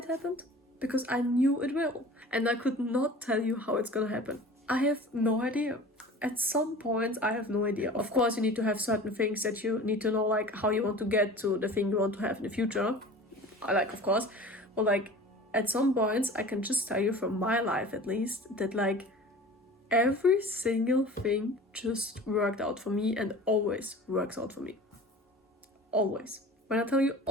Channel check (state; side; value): normal; both; correlation 0.40